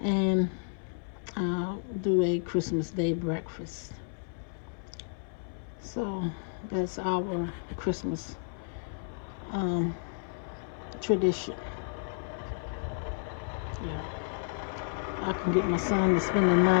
and do a Christmas Day breakfast. So that's our Christmas tradition. Yeah, I can get my son to spend the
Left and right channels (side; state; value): right; silent; 57 dB below the other